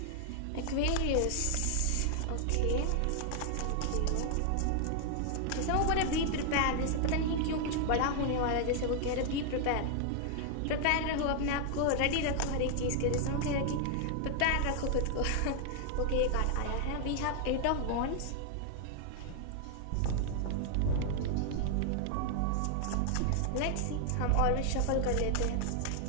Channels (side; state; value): both; different; correlation 0.00